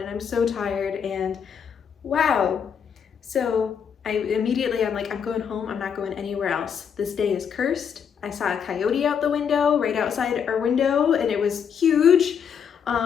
I'm so tired, and wow. So I'm like, I'm going home, I'm not going anywhere else. This day is cursed. I saw a coyote out the window, right outside our window, and it was huge.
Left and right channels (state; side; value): quieter; right; 7.3 dB